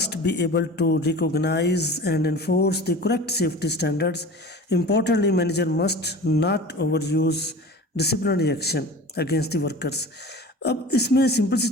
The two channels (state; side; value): normal; both; correlation 0.38